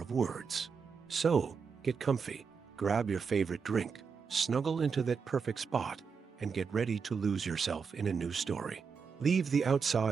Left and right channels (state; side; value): quieter; left; 5.8 dB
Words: words. So, get comfy, grab your favorite drink, snuggle into that perfect spot, and get ready to lose yourself in a new story. Leave the